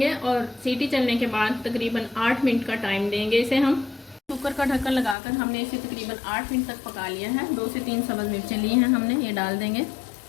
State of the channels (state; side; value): drops out; right; at 5.2 s